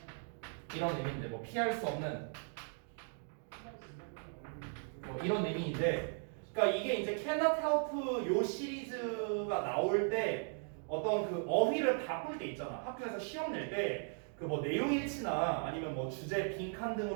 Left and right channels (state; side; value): silent; left; 53 dB below the other